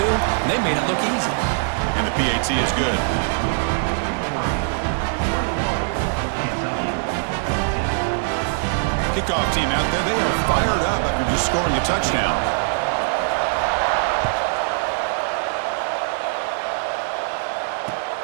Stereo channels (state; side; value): silent; left; digital silence